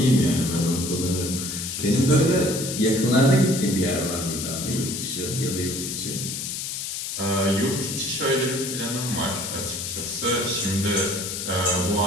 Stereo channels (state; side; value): noise; left; hiss, 5 dB below the sound